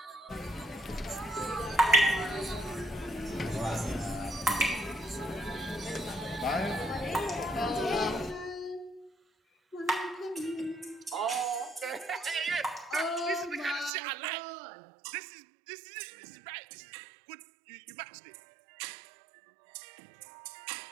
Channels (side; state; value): left; drops out; at 13.9 s